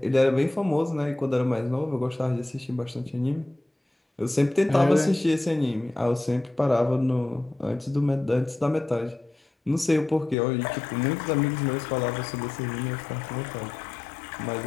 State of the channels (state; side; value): drops out; right; at 10.4 s